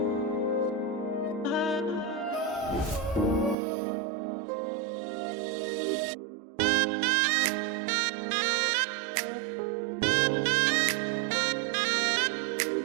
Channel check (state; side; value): drops out; left; at 3.6 s